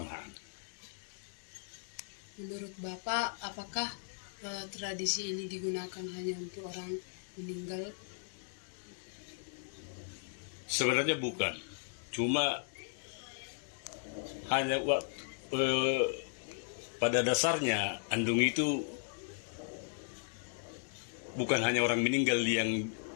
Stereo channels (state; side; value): silent; right; digital silence